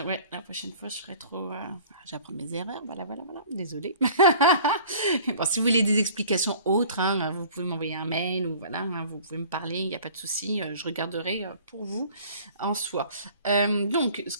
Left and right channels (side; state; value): both; inverted; correlation -0.48